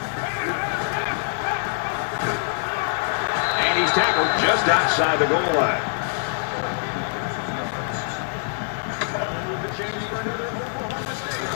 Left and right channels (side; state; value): right; silent; digital silence